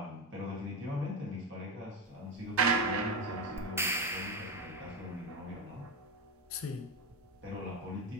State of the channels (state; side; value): normal; both; correlation 0.15